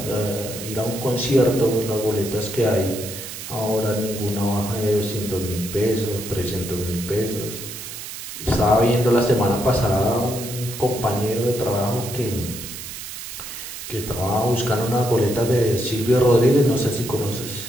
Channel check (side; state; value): right; noise; hiss, 10 dB below the sound